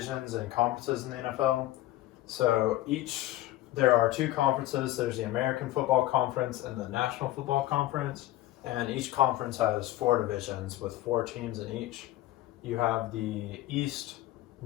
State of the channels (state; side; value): quieter; right; 15.6 dB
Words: and conferences in the NFL. So there are two conferences. There's the American Football Conference and the National Football Conference, and each conference has four divisions with four teams in each. You have the East,